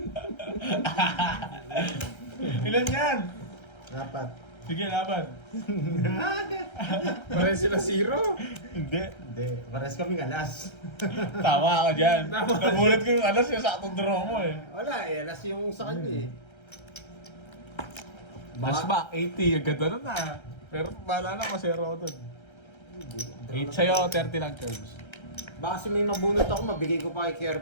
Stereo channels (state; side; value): late; right; 1.3 ms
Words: Ilan yan? 4. Sige, laban. Pare sila 0. Hindi. Hindi, pares kami alas. Tama ka dyan. Tama. Nagulat ko yung alas yung saktong draw mo eh. Wala eh, alas yung sa kanya eh. Last back, 80. Ang ganda nun ah. Pero bahala na, masero ko dun. 8 sa'yo, 30 lang curves. Baka kasi may mabunot ako, mabigay ko pa kay